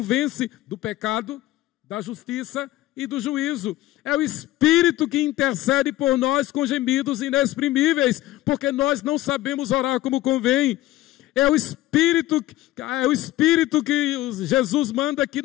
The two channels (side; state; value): right; quieter; 16.1 dB